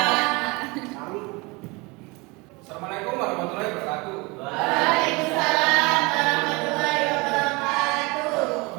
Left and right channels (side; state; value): left; quieter; 25.8 dB